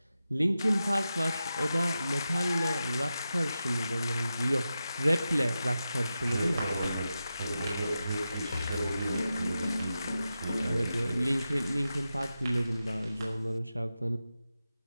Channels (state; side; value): inverted; both; correlation -0.91